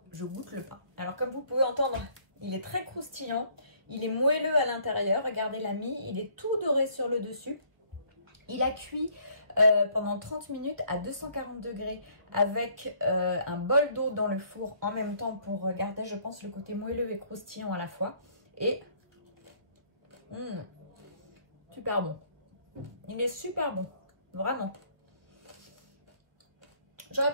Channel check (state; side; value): late; left; 1.1 ms